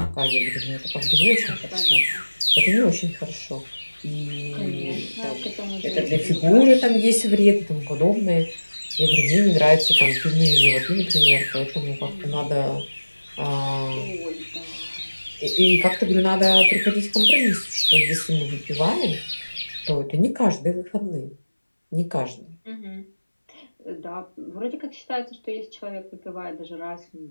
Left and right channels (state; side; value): inverted; both; correlation -1.00